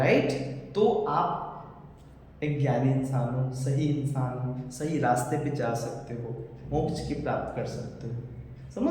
तो आप एक ज्ञानी इंसान हो, सही इंसान हो, सही रास्ते पे जा सकते हो, मोक्ष की प्राप्त कर सकते हो।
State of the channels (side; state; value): both; identical; correlation 1.00